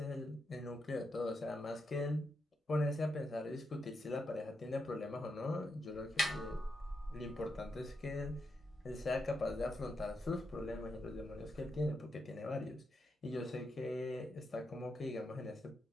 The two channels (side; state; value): both; normal; correlation 0.84